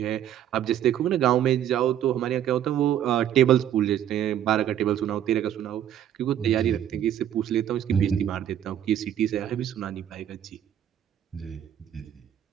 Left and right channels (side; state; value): left; quieter; 10.6 dB